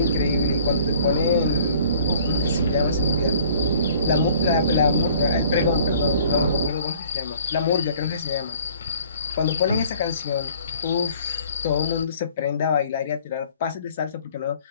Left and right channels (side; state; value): both; inverted; correlation -0.54